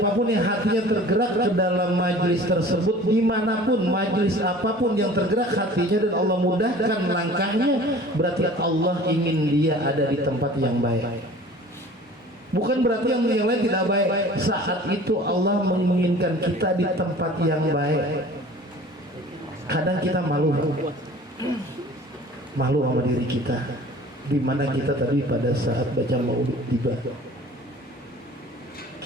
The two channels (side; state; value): both; normal; correlation 0.45